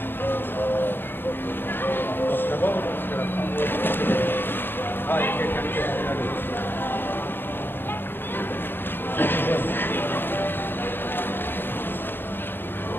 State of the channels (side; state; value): right; late; 0.098 ms